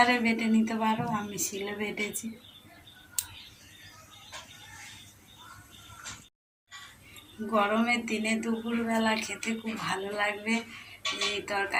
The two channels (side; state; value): both; identical; correlation 1.00